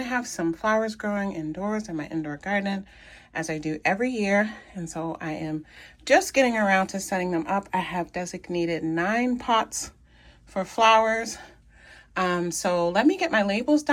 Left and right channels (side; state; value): both; identical; correlation 1.00